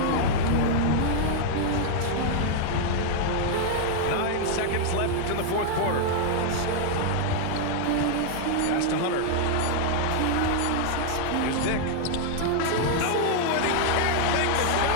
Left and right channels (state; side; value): different; both; correlation 0.00